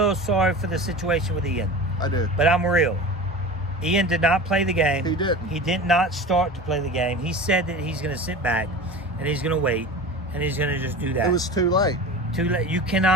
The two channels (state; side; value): normal; both; correlation 0.33